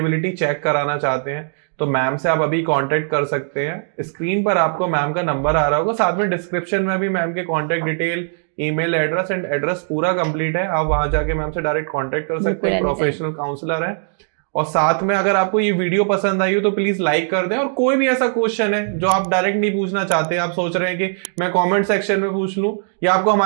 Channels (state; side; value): silent; left; 66 dB below the other